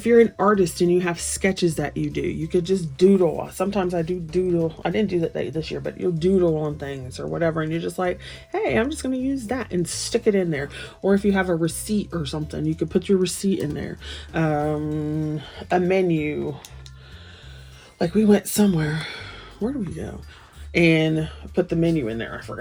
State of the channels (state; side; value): identical; both; correlation 1.00